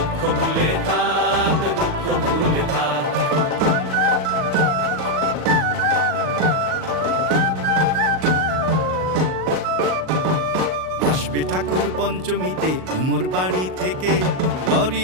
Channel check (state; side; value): late; left; 38 ms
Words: ভুলে থাক, দুঃখ ভুলে থাক। আসবে ঠাকুর পঞ্চমীতে কুমোর বাড়ি থেকে,